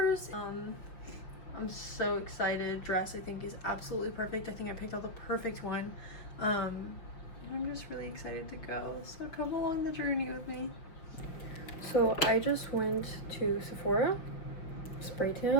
I'm so excited. Dress I think is absolutely perfect. I think I picked out the perfect one. I'm just really excited to go. So come along the journey with me. So I just went to Sephora. Spray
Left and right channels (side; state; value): right; late; 5.9 ms